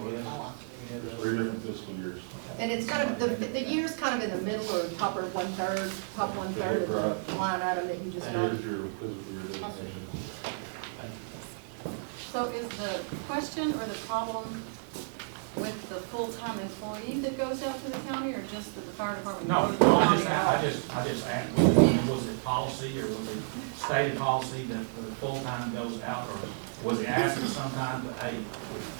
Three different fiscal years. And it's kind of, the year's kind of in the middle or top or one-third, top one-third of the line item that you just And got. here's your fiscal year designation. So is the question or the problem with the full-time employee that goes out to the county, or just that the fire department? No, goes to the no, county? I just asked, was it policy, or was it stated policy that the full-time goes out, or was he asked sometime to, hey,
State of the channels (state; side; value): silent; left; digital silence